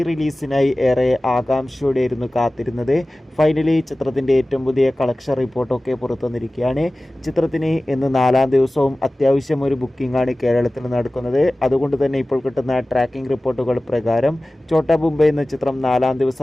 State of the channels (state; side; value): normal; both; correlation 0.97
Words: ഏറെ ആകാംക്ഷയോടെയായിരുന്നു കാത്തിരുന്നത്. ഫൈനലി ചിത്രത്തിൻ്റെ ഏറ്റവും പുതിയ കളക്ഷൻ റിപ്പോർട്ടൊക്കെ പുറത്തു വന്നിരിക്കുകയാണ്. ചിത്രത്തിന് ഇന്ന് 4-ാം ദിവസവും അത്യാവശ്യം ഒരു ബുക്കിംഗ് ആണ് കേരളത്തിൽ നടക്കുന്നത്. അതുകൊണ്ട് തന്നെ ഇപ്പോൾ കിട്ടുന്ന ട്രാക്കിംഗ് റിപ്പോർട്ടുകൾ പ്രകാരം ഛോട്ടാ മുംബൈ എന്ന ചിത്രം 4-ാം